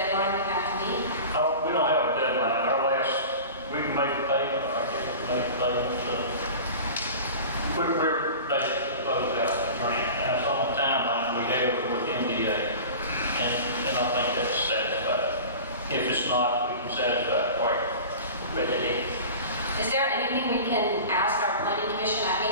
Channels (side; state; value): both; inverted; correlation -0.36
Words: we have to meet? We don't have a deadline. We can make a payment, or I guess we make a payment. We're basically closed out the grant. And that's on the timeline we have with MDA. And I think that's satisfied. If it's not, we can satisfy it quite readily. Is there anything we can ask our planning commission? I